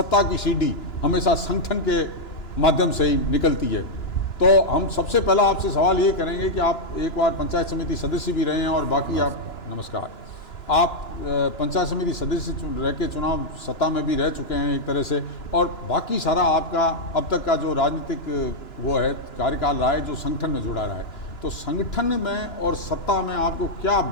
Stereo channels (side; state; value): right; late; 2.9 ms